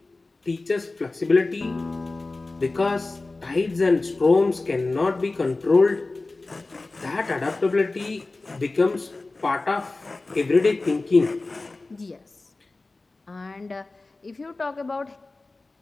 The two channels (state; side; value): quieter; right; 3.3 dB